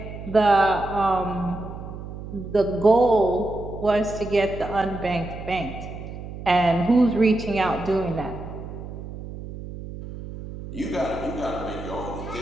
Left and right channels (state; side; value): noise; right; hum, 11 dB below the sound